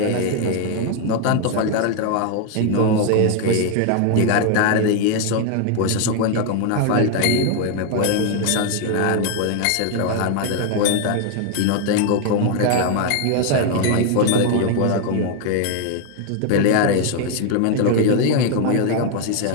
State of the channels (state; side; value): different; both; correlation 0.00